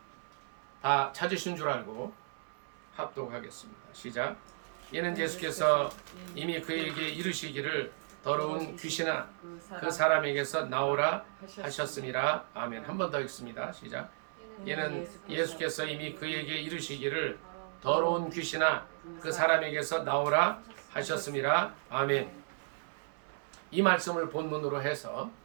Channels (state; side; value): silent; left; 55 dB below the other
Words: 다 찾으신 줄 알고 합독하겠습니다. 시작. 이는 예수께서 이미 그에게 이르시기를 더러운 귀신아 그 사람에게서 나오라 하셨음이라. 아멘. 한 번 더 읽습니다. 시작. 이는 예수께서 이미 그에게 이르시기를 더러운 귀신아 그 사람에게서 나오라 하셨음이라. 아멘. 이 말씀을 본문으로 해서